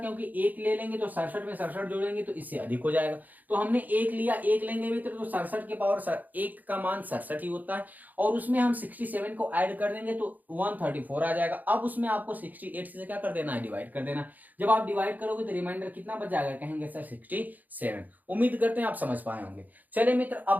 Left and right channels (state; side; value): late; left; 0.082 ms